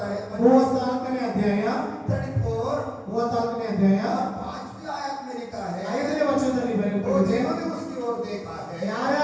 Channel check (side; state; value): both; identical; correlation 1.00